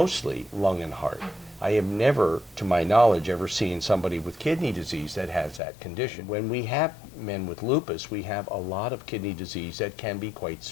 lung and heart. I have never, to my knowledge, ever seen somebody with kidney disease that has that condition. When we have men with lupus, we have a lot of kidney disease that can be quite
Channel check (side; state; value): right; drops out; at 5.6 s